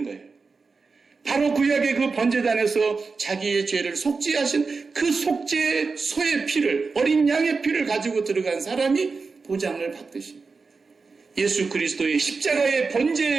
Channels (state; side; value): quieter; left; 4.5 dB